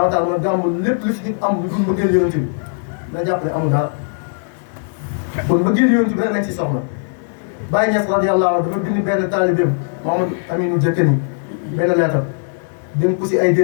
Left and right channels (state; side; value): silent; right; digital silence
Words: daal mooy gàmmu lépp lu si nit am lu dul bëggeel yonent bi na jàpp ne amul dara kon bëggeel yonent bi rek lañ si soxla Baye Niass radiyallahu anhu dafa bind benn taalibeem Mamadou Aminou Diakeni benn leetar dénk ko si ay